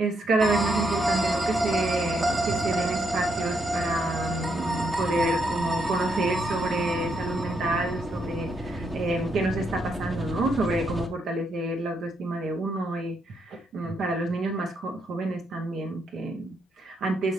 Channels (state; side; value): normal; both; correlation 0.78